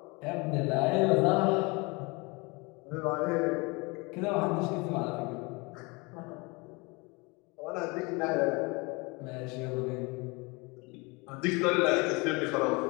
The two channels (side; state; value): right; quieter; 27.4 dB